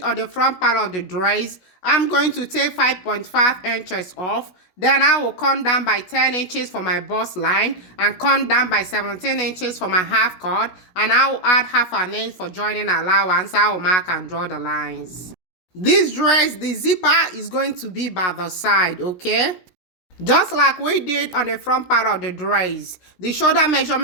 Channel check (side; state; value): right; late; 16 ms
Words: on the front part of the dress, I'm going to take 5.5 inches off. Then I will come down by 10 inches for my bust line and come down by 17 inches for my half cut. And I will add half an inch for joining allowance. I will mark and draw the lines. This dress, the zipper is going to be by the side, okay? Just like we did on the front part of the dress, the shoulder